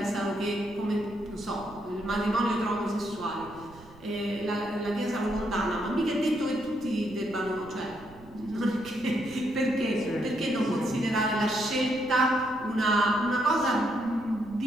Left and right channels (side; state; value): right; noise; rumble, 22 dB below the sound